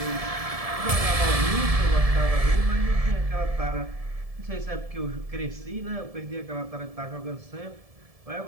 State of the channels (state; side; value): late; left; 1.7 ms